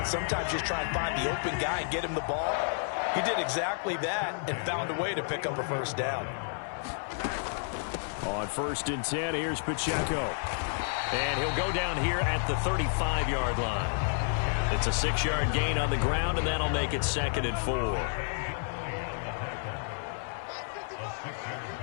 Sometimes just try and find the open guy and get him the ball. He did exactly that and found a way to pick up a first down. On 1st and 10, here's Pacheco. And he'll go down here at the 35-yard line. It's a 6-yard gain on the ground, and that'll make it 2nd and 4.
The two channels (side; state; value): right; silent; 57 dB below the other